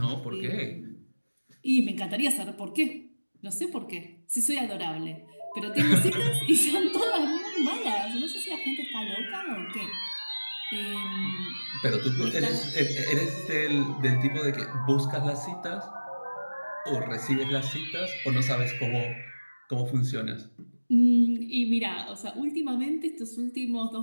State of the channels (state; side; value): inverted; both; correlation -1.00